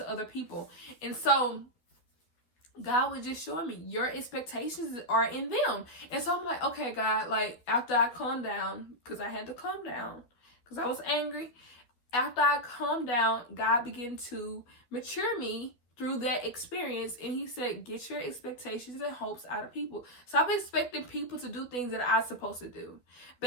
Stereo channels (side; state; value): right; late; 12 ms